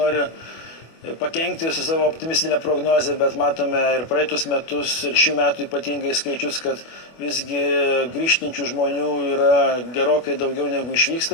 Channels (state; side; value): late; right; 25 ms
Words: pakenkti su savo optimistinė prognozė, bet matome ir praeitus metus, ir šių metų ypatingai skaičius, kad visgi grįžtančių žmonių yra gerokai daugiau negu